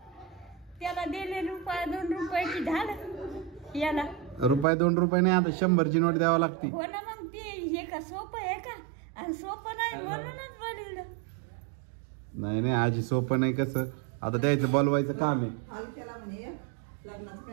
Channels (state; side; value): drops out; left; at 4.7 s